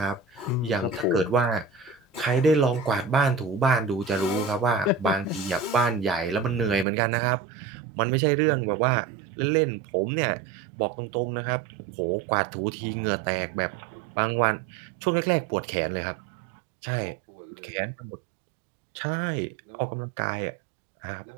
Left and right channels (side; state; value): left; drops out; at 6.9 s